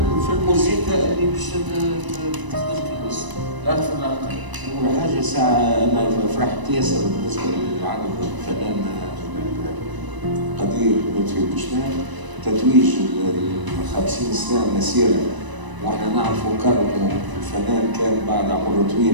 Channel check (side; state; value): left; late; 1.0 ms